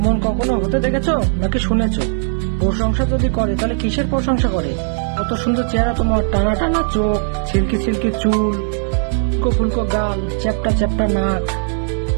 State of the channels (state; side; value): silent; left; 67 dB below the other